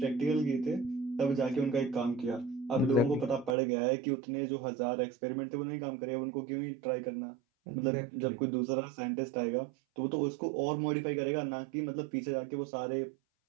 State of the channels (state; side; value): drops out; left; at 3.6 s